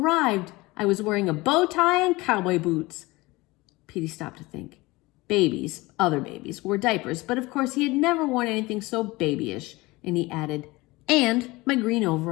I was wearing a bow tie and cowboy boots. Petey stopped to think. Babies, other babies, wore diapers, but of course he had never worn anything so babyish. And he added, and my green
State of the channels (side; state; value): right; quieter; 21.7 dB